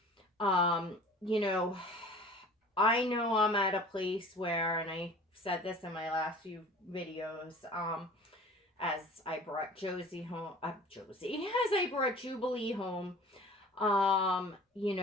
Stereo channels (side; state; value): both; normal; correlation 0.44